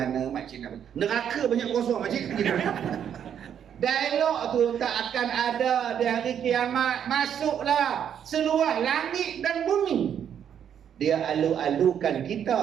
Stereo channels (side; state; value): left; quieter; 8.9 dB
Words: makcik nak? Neraka banyak kosong makcik. Dialog tu tak akan ada di hari kiamat. Masuklah seluas langit dan bumi. Dia alu-alukan